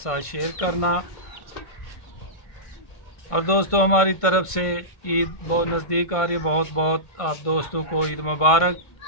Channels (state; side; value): late; right; 1.5 ms